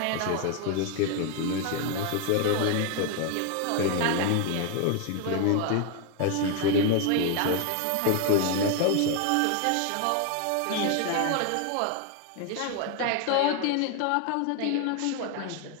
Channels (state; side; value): different; both; correlation 0.01